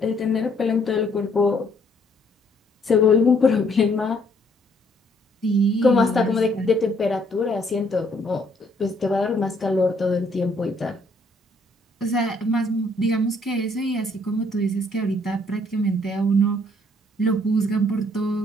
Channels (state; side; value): normal; both; correlation 0.66